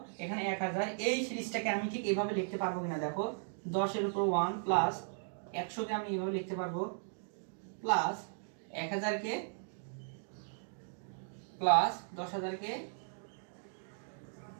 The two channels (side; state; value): left; silent; digital silence